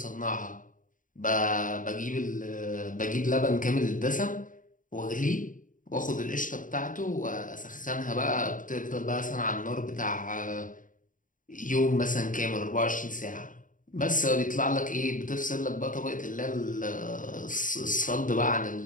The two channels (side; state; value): right; late; 0.38 ms